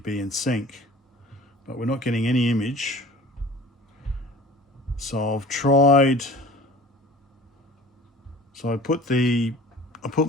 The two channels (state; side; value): normal; both; correlation 0.44